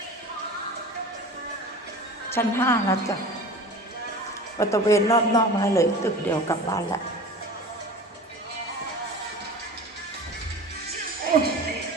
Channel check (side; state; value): both; normal; correlation 0.37